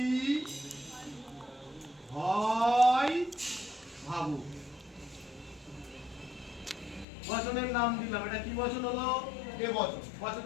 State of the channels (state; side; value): drops out; right; at 7.1 s